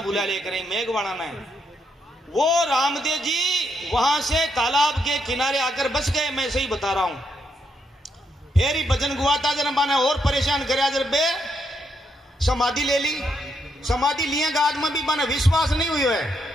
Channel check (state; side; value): normal; both; correlation 0.78